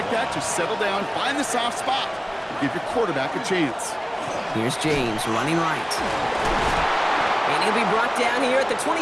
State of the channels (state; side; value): identical; both; correlation 1.00